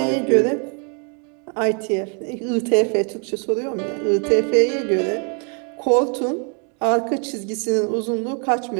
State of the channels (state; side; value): quieter; left; 39.8 dB